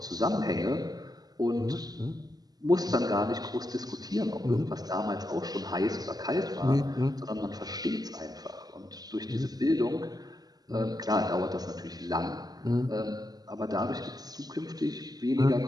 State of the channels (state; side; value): late; left; 0.19 ms